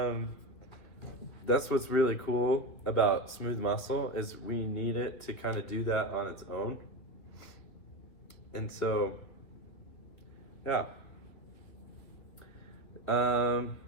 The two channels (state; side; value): late; right; 3.3 ms